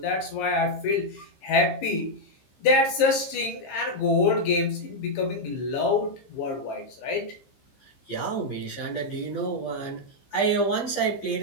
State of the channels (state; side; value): late; right; 15 ms